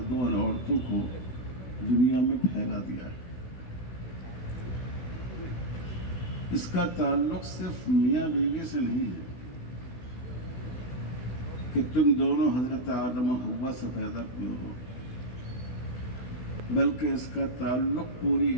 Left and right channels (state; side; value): late; right; 16 ms